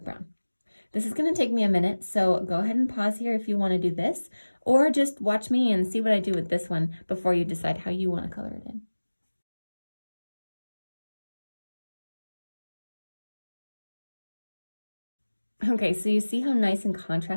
brown. This is gonna take me a minute, so go ahead and pause here if you wanna do this, or just watch me and see what I do with this one before you decide how you wanna color it in. Okay, so you see how nice and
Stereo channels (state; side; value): inverted; both; correlation -1.00